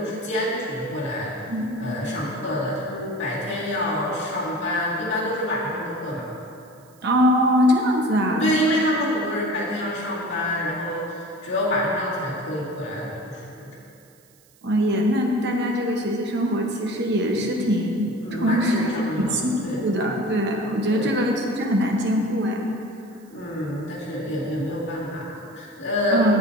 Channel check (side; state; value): right; noise; hiss, 30 dB below the sound